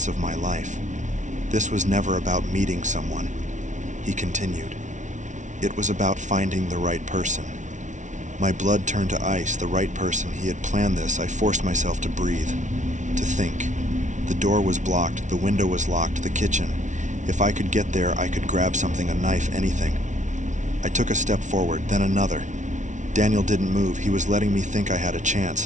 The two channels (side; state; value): left; late; 0.36 ms